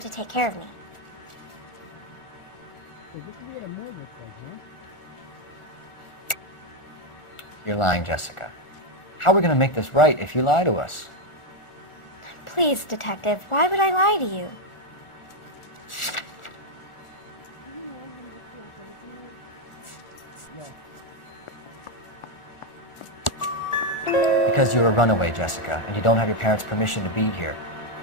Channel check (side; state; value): right; late; 1.4 ms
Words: to take care of me. You're lying, Jessica. How are we going to make this right if you lie to us? Please, Detective, why would I lie to you? Because you're a runaway, Jessica, and you don't have your parents' permission to be here.